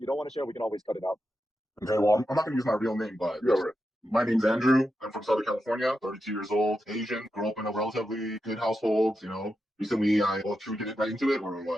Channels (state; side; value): normal; both; correlation 0.88